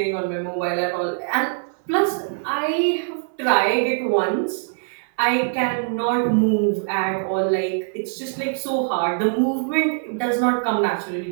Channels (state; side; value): silent; left; 64 dB below the other